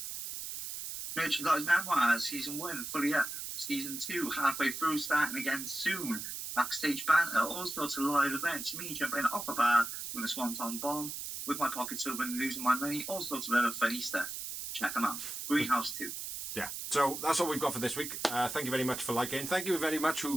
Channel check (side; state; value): right; noise; hiss, 6 dB below the sound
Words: Merchandise Memoirs, Season 1, fully up. Season 2, halfway through, starting again soon. Backstage banter, all sorts of live events. Me jumping off a bar, doing a swanton bomb. with my pockets open, losing my money, all sorts of other funny stuff. Check them out. Greenhouse 2. Yeah, so that's all we've got for this week. Thank you very much for liking. Thank you very much